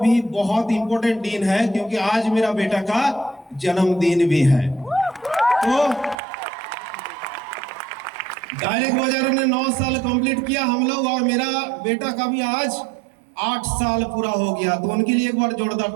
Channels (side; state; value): left; drops out; at 6.2 s